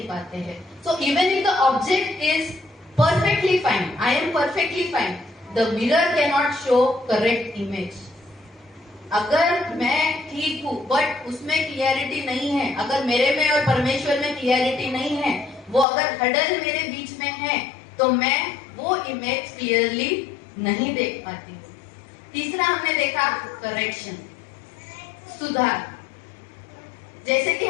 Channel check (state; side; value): drops out; right; at 15.9 s